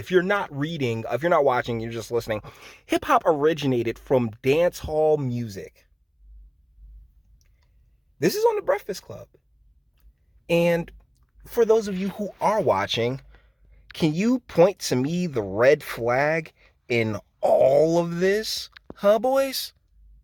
you're not watching, you're just listening. Hip hop originated from dance hall music. This is on the Breakfast Club. And for those of you who are watching, can you point to me the red flag in all of this? Huh, boys?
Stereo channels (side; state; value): both; identical; correlation 1.00